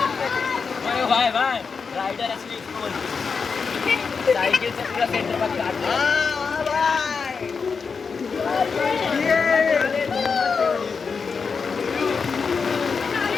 भाई भाई राइडर असली इसको बोलते साइकिल से पूरा सेंटर पर काट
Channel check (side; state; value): right; quieter; 5.4 dB